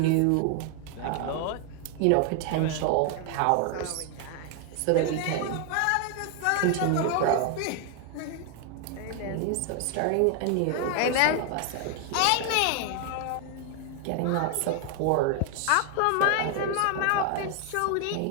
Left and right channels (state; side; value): different; both; correlation 0.00